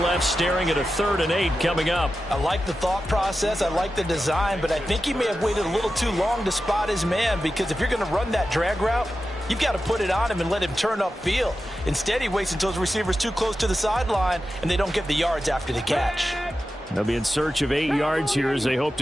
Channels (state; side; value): normal; both; correlation 0.92